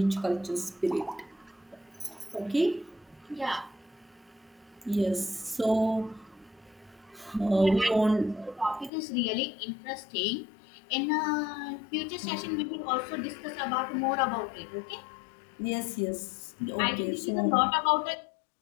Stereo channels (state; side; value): drops out; right; at 8.9 s